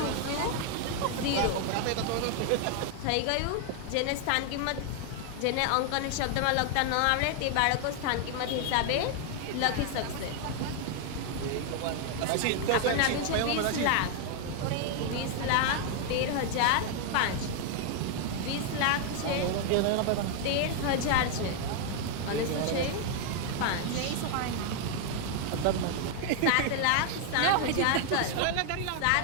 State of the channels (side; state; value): both; different; correlation 0.00